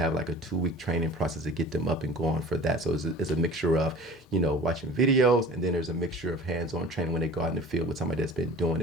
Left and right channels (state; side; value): normal; both; correlation 0.41